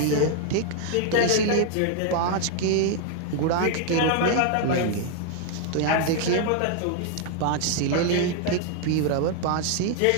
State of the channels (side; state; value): both; different; correlation 0.00